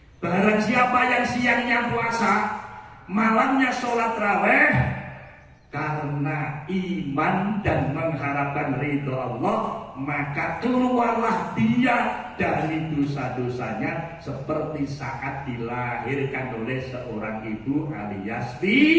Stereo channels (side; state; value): both; identical; correlation 1.00